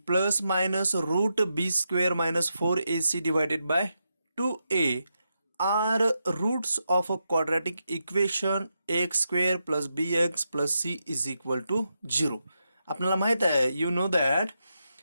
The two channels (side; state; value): both; inverted; correlation -0.85